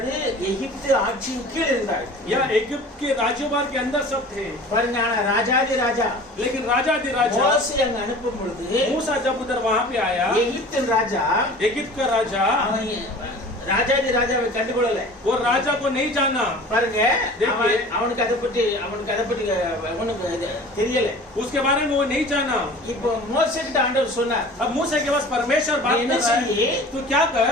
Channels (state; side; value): normal; both; correlation 0.42